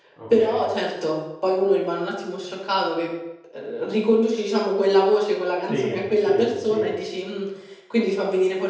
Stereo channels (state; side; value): identical; both; correlation 1.00